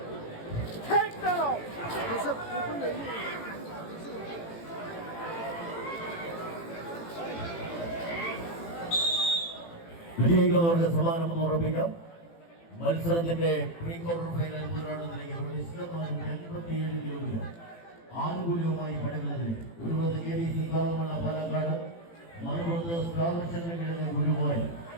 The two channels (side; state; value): right; late; 18 ms